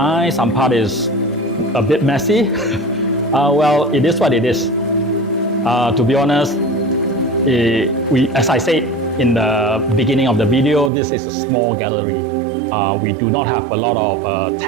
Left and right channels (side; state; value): left; drops out; at 10.9 s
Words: some part is a bit messy. Well, it is what it is. To be honest, as I said in the beginning of the video, this is a small gallery. We do not have a lot of